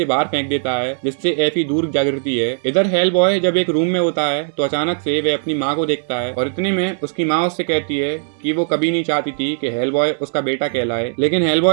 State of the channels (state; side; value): silent; left; 67 dB below the other